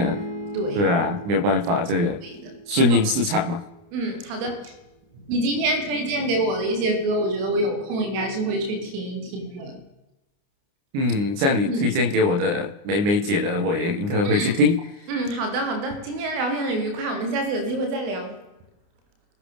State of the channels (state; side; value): late; left; 29 ms